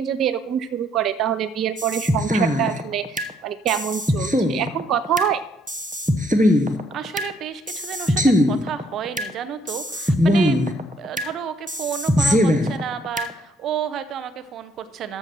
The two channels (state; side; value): normal; both; correlation 0.67